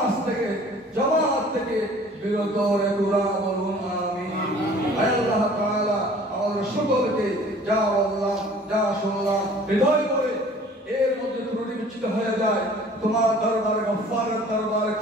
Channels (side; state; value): both; normal; correlation 0.49